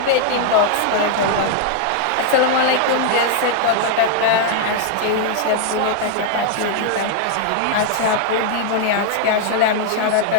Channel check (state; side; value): different; both; correlation -0.01